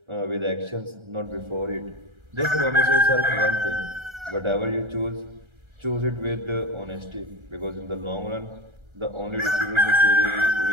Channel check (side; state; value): left; late; 1.3 ms